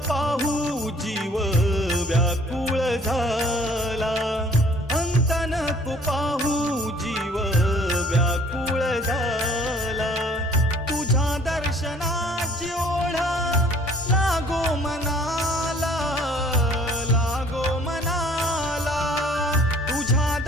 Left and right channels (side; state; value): both; normal; correlation 0.55